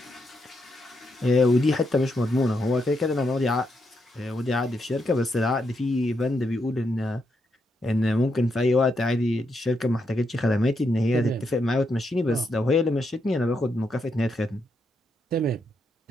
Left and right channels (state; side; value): normal; both; correlation 0.81